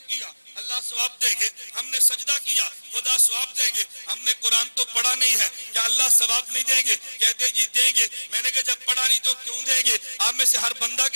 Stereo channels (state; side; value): inverted; both; correlation -1.00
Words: کیا اللہ ثواب دیں گے. ہم نے سجدہ کیا خدا ثواب دیں گے. ہم نے قرآن تو پڑھا نہیں ہے کیا اللہ ثواب نہیں دیں گے؟ کہتے جی دیں گے. میں نے کہا جب پڑھا نہیں تو کیوں دیں گے؟ آپ میں سے ہر بندہ